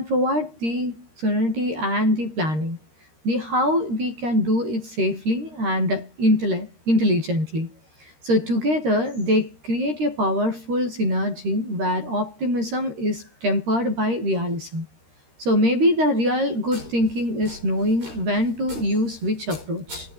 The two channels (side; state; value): left; late; 13 ms